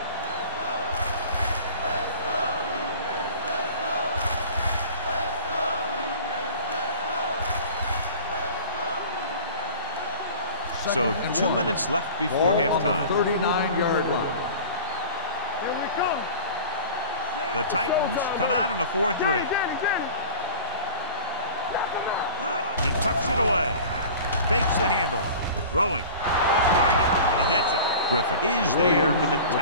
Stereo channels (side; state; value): both; inverted; correlation -0.40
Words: So 2 minutes left before halftime. 39-yard line. Here we come. The Titans come out in a 4-3. He tucks it away. Fakes the handoff. Throwing. Off target, and he gets it. Griffin is there for the